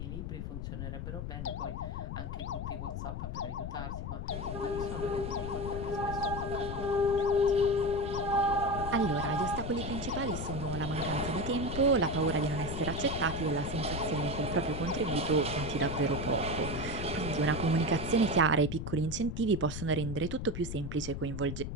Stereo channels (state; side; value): noise; left; rumble, 5 dB below the sound